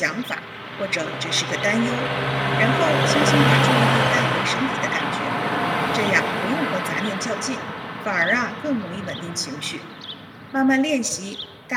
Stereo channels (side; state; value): both; identical; correlation 1.00